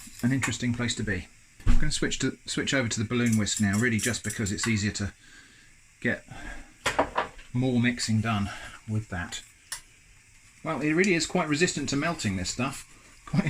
an interesting place to be. I'm going to switch over to the balloon whisk now, really just because it's easier to get more mixing done with that. Well, it really is quite resistant to melting, this stuff. Quite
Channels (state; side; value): identical; both; correlation 1.00